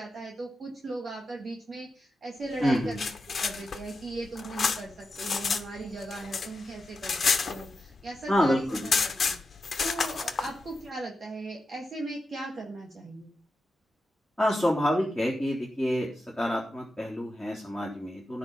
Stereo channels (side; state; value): both; normal; correlation 0.89